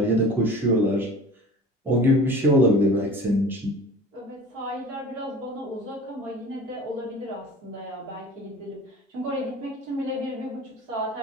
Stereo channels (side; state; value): both; normal; correlation 0.40